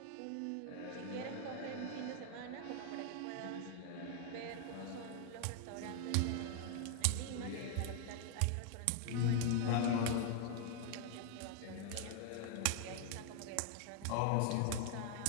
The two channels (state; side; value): different; both; correlation 0.00